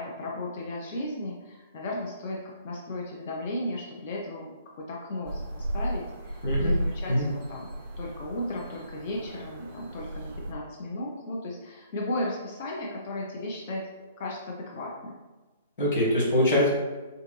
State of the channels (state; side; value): inverted; both; correlation -0.57